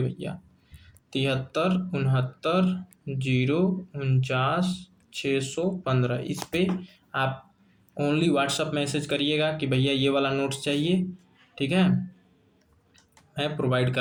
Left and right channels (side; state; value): both; identical; correlation 1.00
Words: भैया 7369094615, इस पे आप ओनली व्हाट्सअप मैसेज करिएगा कि भैया ये वाला नोट्स चाहिए। ठीक है, मैं प्रोवाइड